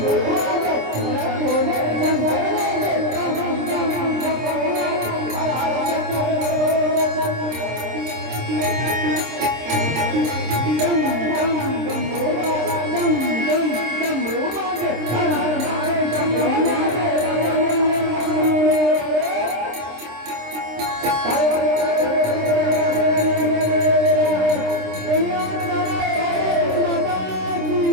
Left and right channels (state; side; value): late; left; 26 ms